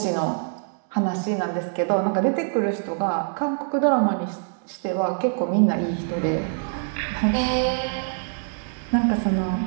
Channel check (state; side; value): silent; left; digital silence